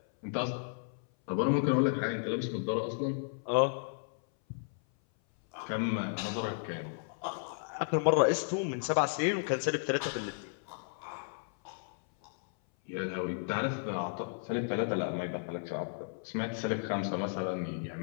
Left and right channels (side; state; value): right; silent; 55 dB below the other